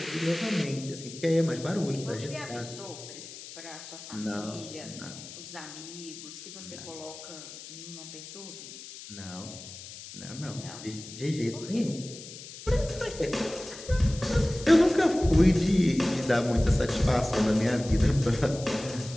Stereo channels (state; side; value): noise; left; hiss, 14 dB below the sound